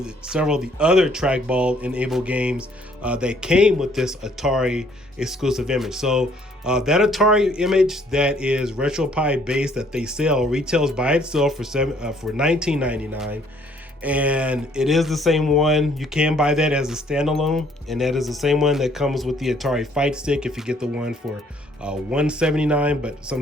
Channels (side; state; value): both; normal; correlation 0.63